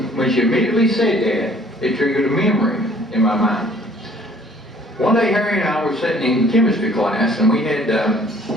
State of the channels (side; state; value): both; normal; correlation 0.56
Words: she immediately said that, it triggered a memory in my mind. One day, Harry and I were sitting in chemistry class, and we had